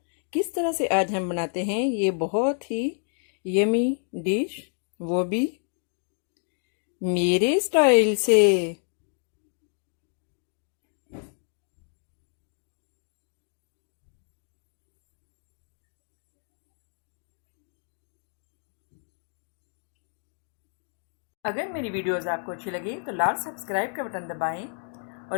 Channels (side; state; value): right; silent; digital silence